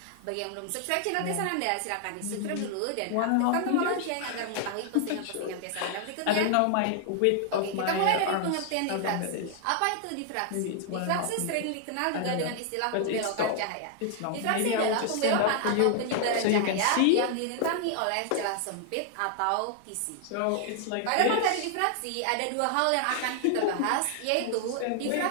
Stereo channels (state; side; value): different; both; correlation 0.00